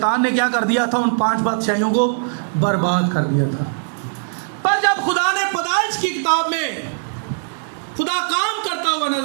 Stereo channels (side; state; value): left; silent; digital silence